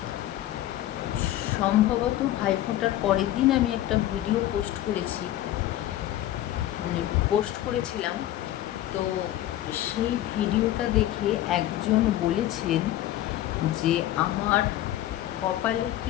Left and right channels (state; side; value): quieter; right; 13.8 dB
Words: সম্ভবত ভাইফোঁটার পরের দিন আমি একটা ভিডিও পোস্ট করেছিলাম। তো সেই ভিডিওটা দেখে একজন বলেছেন যে আমার কপালে